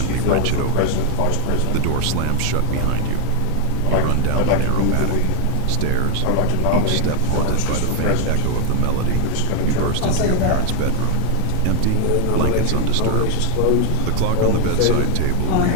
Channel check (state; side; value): different; both; correlation 0.00